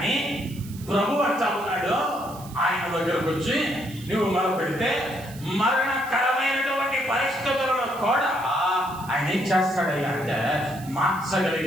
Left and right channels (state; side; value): noise; right; hiss, 19 dB below the sound